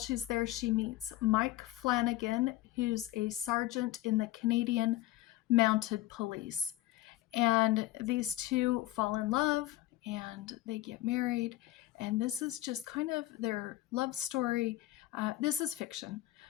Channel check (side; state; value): right; quieter; 16.1 dB